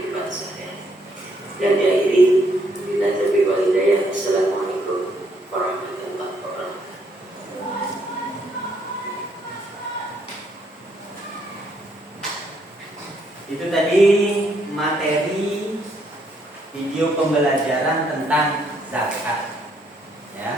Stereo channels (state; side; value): normal; both; correlation 0.71